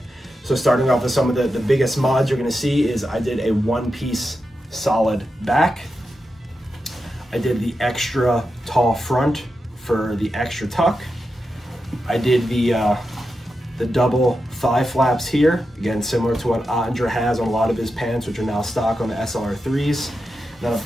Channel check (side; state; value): both; normal; correlation 0.89